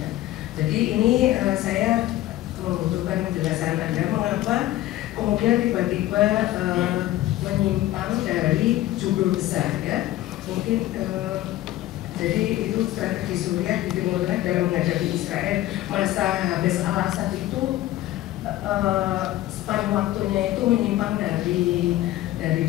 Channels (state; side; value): quieter; right; 15.2 dB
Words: Jadi ini saya membutuhkan penjelasan Anda mengapa kemudian tiba-tiba menyimpang dari judul besar ya. Mungkin jadi itu strategi Suriah di Timur Tengah dalam menghadapi Israel. Masa habis al-Assad itu span waktunya itu menyimpang dari